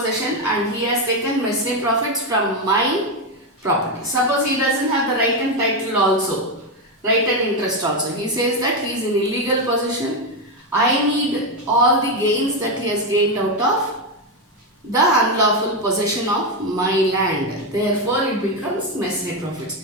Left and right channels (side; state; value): both; normal; correlation 0.09